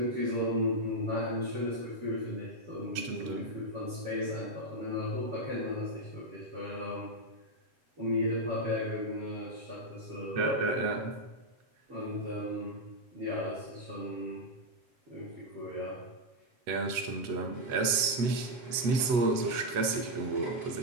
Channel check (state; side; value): late; left; 8.1 ms